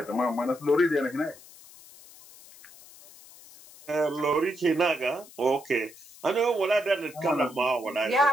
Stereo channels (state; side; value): noise; left; hiss, 21 dB below the sound